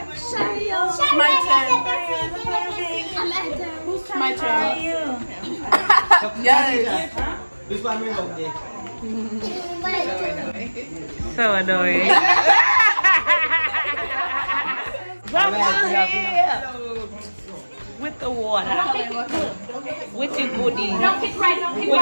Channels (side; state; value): both; inverted; correlation -1.00